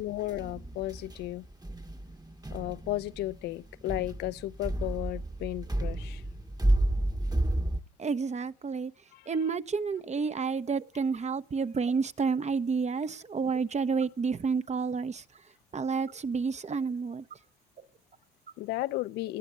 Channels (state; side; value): normal; both; correlation 0.64